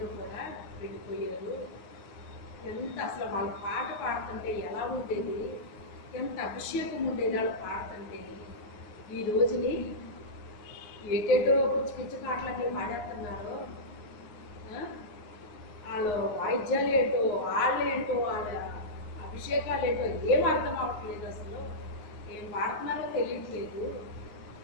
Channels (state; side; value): late; right; 9.5 ms